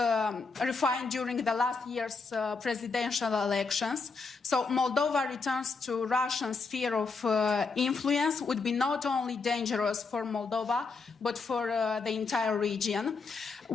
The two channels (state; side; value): quieter; right; 4.5 dB